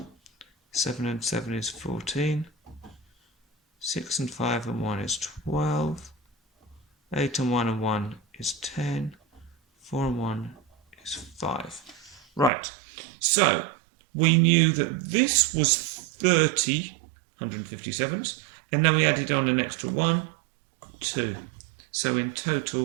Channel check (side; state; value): left; drops out; at 12.5 s